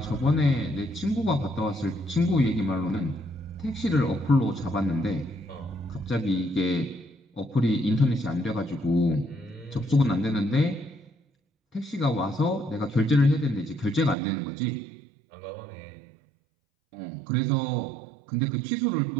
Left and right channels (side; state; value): left; drops out; at 14.2 s